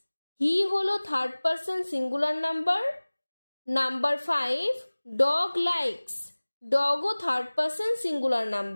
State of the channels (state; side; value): inverted; both; correlation -1.00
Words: হি হলো third person singular number. Number 5, dog likes. ডগও থার্ড পারসন সিঙ্গুলার